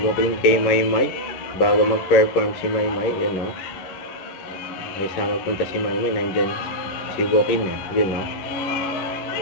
kay Maymay bago mag-perform si Maymay, yun, no? Ay sama punta si Maymay, nandyan si Joaquin, yun, no?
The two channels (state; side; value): late; right; 11 ms